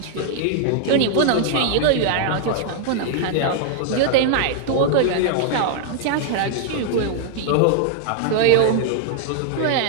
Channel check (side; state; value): both; different; correlation -0.01